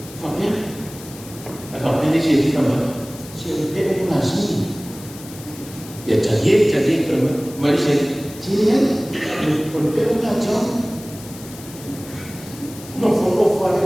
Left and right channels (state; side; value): noise; left; hiss, 17 dB below the sound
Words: Fabian, Fabian ni siapa kamu? Siapa yang mengasih? Ya jadi kamu, mari saya, siapa? Orang yang mengajar, no follow